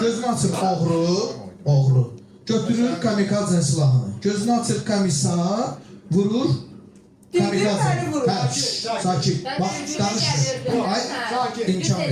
açır oğru. Götürür kamikazın silahını. Gözünü açır komissar, vurur. Sakin. Bax, danışmır. Ay, imkan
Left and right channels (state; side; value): identical; both; correlation 1.00